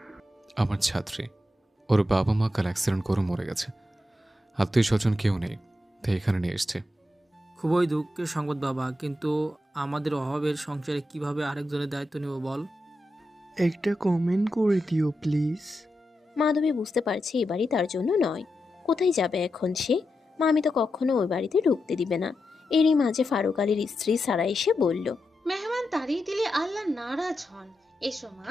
আমার ছাত্রী। ওর বাবা মা কাল অ্যাক্সিডেন্ট করে মরে গেছে। আত্মীয় স্বজন কেউ নেই, তাই এখানে নিয়ে এসছে। খুবই দুঃখের সংবাদ বাবা, কিন্তু আমাদের অভাবের সংসারে কিভাবে আরেকজনের দায়িত্ব নেব বল? একটা কমেন্ট করে দিও প্লিজ। মাধবী বুঝতে পারছে এ বাড়ি তার জন্য নয়। কোথায় যাবে এখন সে? মামি তো কখনো ওই বাড়িতে ঢুকতে দিবে না। এরই মাঝে ফারুক আলীর স্ত্রী সারা এসে বলল, মেহমান তাড়িয়ে দিলে আল্লাহ নারাজ হন। এসো মা,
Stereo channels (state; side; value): normal; both; correlation 0.88